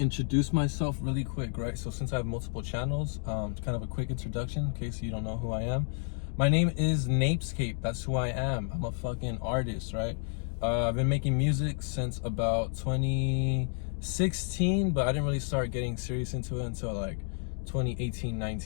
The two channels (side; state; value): right; silent; 57 dB below the other